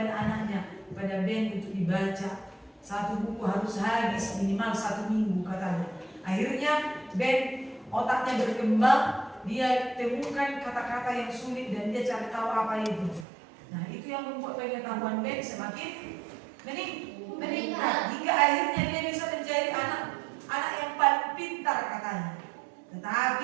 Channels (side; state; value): left; drops out; at 13.2 s